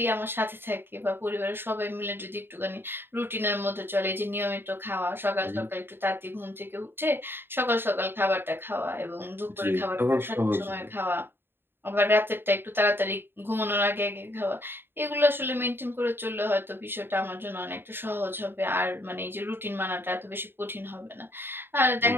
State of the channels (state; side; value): late; left; 0.10 ms